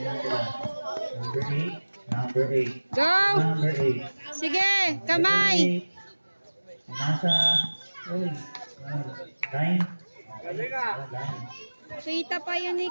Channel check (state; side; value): inverted; both; correlation -1.00